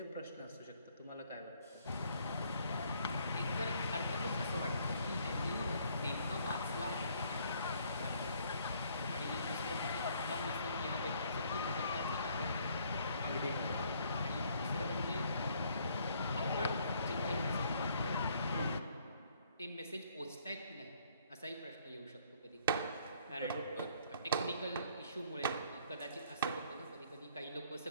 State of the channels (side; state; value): both; inverted; correlation -0.65